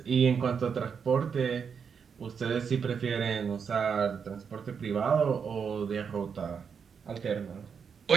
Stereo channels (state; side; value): quieter; left; 6.5 dB